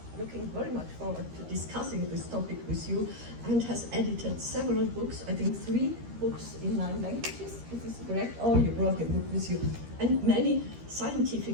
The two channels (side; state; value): left; late; 13 ms